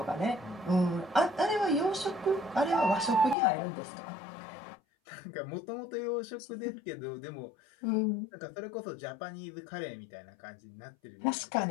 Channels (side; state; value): right; drops out; at 3.4 s